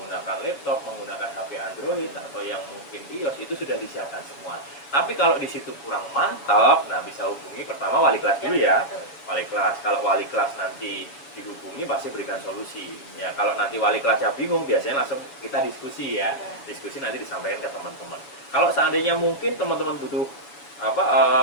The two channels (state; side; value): late; right; 7.0 ms